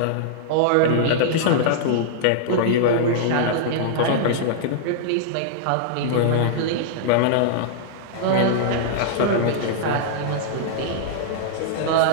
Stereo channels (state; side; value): different; both; correlation -0.02